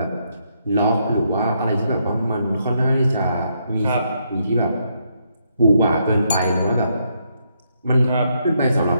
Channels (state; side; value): inverted; both; correlation -0.76